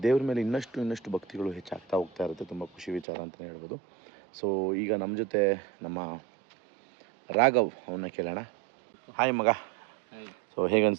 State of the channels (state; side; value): drops out; left; at 3.1 s